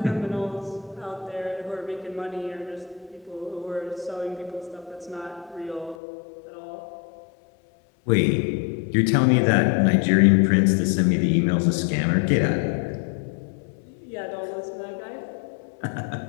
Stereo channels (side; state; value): right; drops out; at 6.0 s